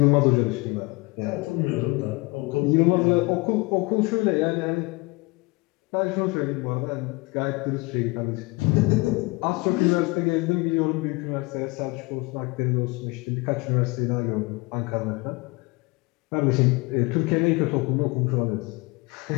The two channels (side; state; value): right; quieter; 25.6 dB